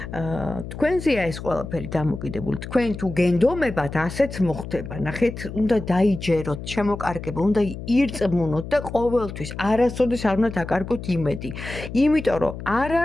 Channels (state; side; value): noise; left; hum, 10 dB below the sound